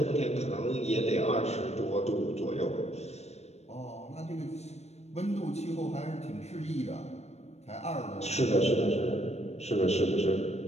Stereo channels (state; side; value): late; right; 0.31 ms